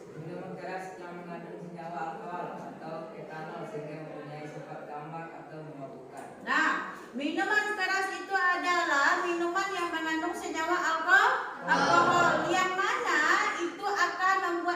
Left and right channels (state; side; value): identical; both; correlation 1.00